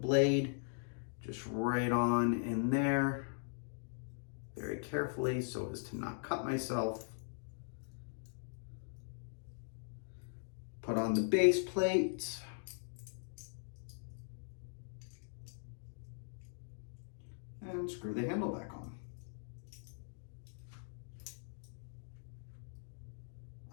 just right on in there very carefully so as to not cut myself. Put on the base plate. And screw the handle back on.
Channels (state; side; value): silent; right; digital silence